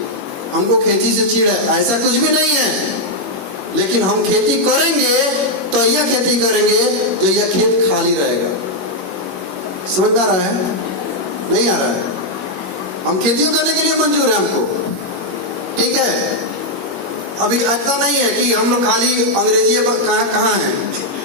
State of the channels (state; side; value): late; left; 21 ms